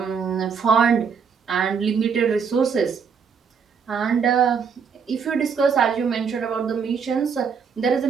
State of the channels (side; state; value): left; quieter; 6.3 dB